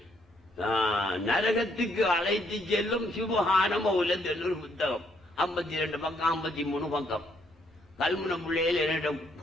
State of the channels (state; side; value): normal; both; correlation 0.70